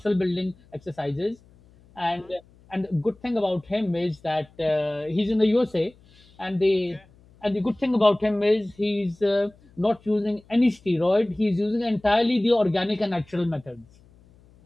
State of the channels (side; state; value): left; noise; hum, 28 dB below the sound